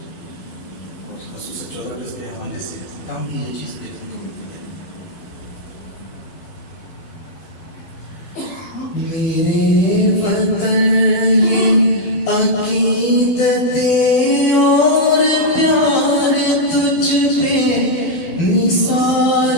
اور خصوصاً 14 اگست کے حوالے سے کام بھی یہ چیز دیکھنے کو ملتی ہے۔ میرے وطن یہ عقیدتیں اور پیار تجھ پہ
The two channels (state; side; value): late; right; 12 ms